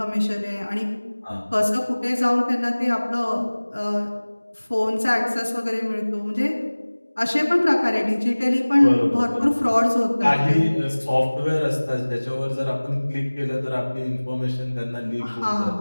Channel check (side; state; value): both; inverted; correlation -1.00